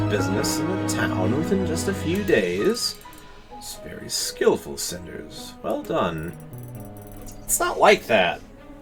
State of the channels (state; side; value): identical; both; correlation 1.00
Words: in the town within just a few days? It's very skillful, Cinders. Well done. It's not like that.